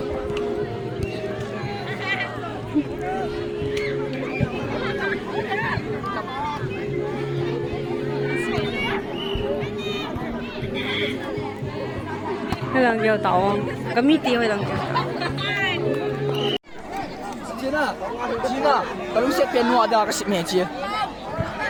Cái lần vô tàu có mít tiêu hay lần vô. 把路线变挪的个面积。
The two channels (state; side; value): identical; both; correlation 1.00